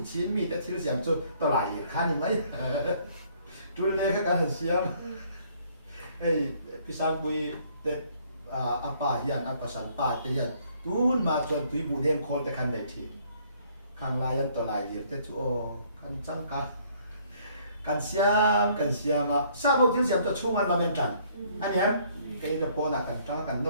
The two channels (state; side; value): inverted; both; correlation -0.63